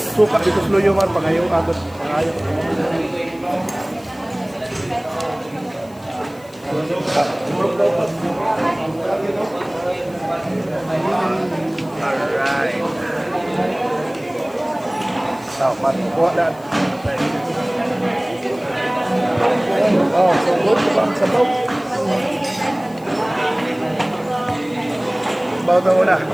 dito sa luyo man, pangayo agad. Pangayo. Alright. Now, matukuha na. Oh, so good sa bang sabaw. Sabaw na muna.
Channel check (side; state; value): left; noise; hiss, 25 dB below the sound